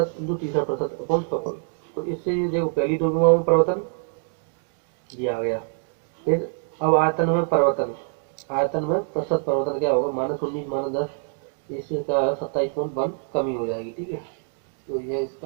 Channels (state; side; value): silent; left; 62 dB below the other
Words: इंटू तीसरा प्रतिशत अपॉन 100। तो इससे ये देखो पहली दो विमाओं में परिवर्तन ये आ गया। फिर अब आयतन में परिवर्तन, आयतन में प्रतिशत परिवर्तन क्या होगा, -19 -10, इससे क्या है 27.1 कमी हो जाएगी। ठीक है, तो यह